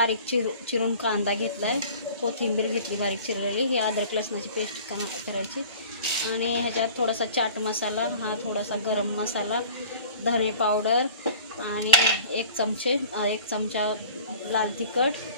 चिरून कांदा घेतलाय, कोथिंबीर घेतली बारीक चिरलेली। ही अद्रक लसणाची पेस्ट करायची आणि ह्याच्यात थोडासा चाट मसाला, हा थोडासा गरम मसाला, धने पावडर आणि एक चमचा लाल तिखट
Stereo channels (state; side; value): inverted; both; correlation -0.46